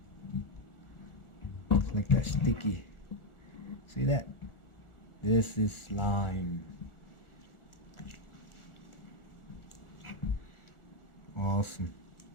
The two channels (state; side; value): late; right; 1.4 ms